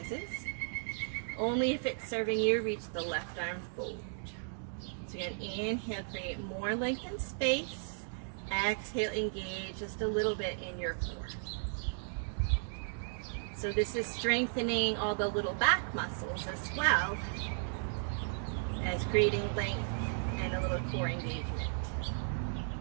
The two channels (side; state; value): left; silent; digital silence